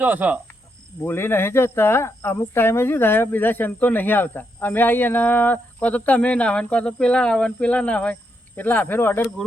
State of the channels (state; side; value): normal; both; correlation 0.80